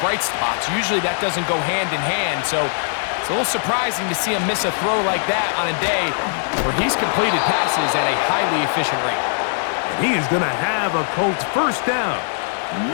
bright spots. Usually that doesn't go hand in hand, so it's a little surprising to see him miss a throw like that on a day where he's completed passes at a highly efficient rate. And he is going to have a Colts 1st down,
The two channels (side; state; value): right; silent; digital silence